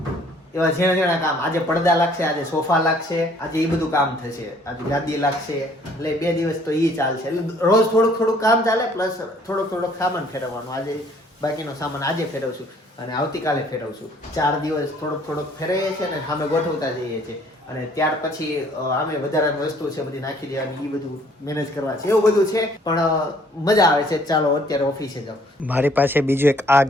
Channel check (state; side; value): normal; both; correlation 0.60